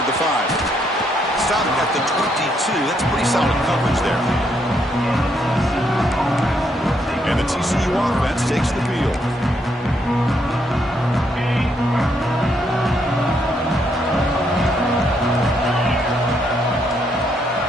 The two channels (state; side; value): normal; both; correlation 0.74